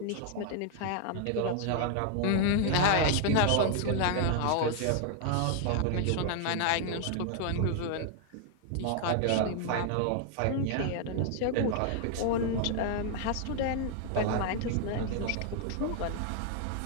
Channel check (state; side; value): different; both; correlation 0.00